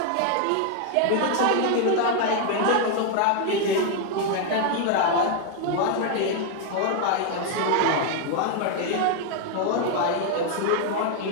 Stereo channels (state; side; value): different; both; correlation 0.00